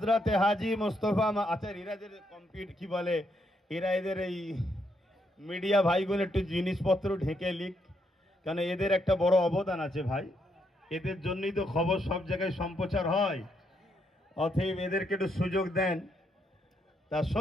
হাজি মুস্তফা এরাদের কম্পিউটার কি বলে, এরা এদের এই মিডিয়া ভাইগুলো একটু জিনিসপত্র ঢেকে লিখ, কারণ এদের একটা বড় অবদান আছে ভাই, এদের জন্যই তো খবর সব জায়গায় সম্প্রচার হয়। অতএব এদেরকে একটু সুযোগ দেন। তা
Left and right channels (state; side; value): normal; both; correlation 0.77